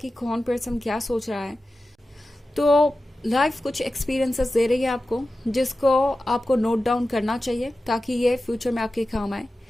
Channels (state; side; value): normal; both; correlation 0.94